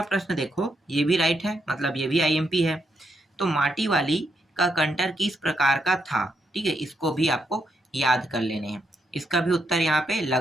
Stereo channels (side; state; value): both; normal; correlation 0.80